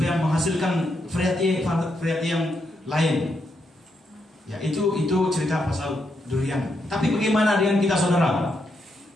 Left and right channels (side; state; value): both; normal; correlation 0.80